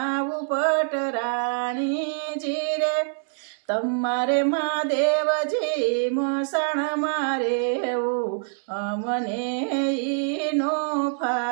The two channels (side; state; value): left; silent; 62 dB below the other